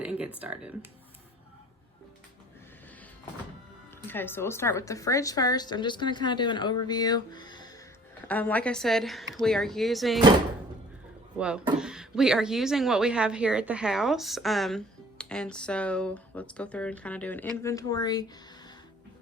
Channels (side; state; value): both; normal; correlation 0.51